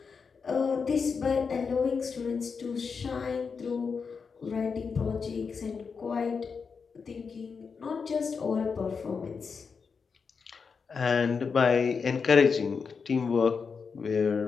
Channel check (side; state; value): right; quieter; 5.5 dB